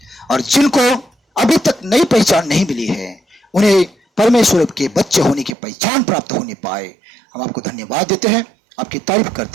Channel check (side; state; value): left; drops out; at 5.6 s